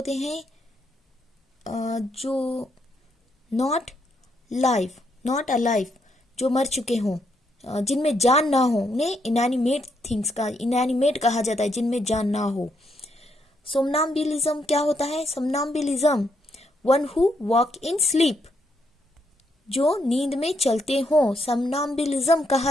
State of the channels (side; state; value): both; normal; correlation 0.76